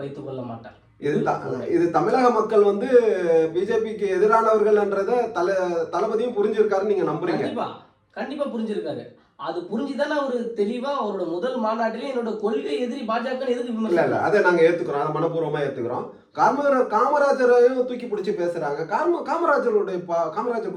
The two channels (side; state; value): both; identical; correlation 1.00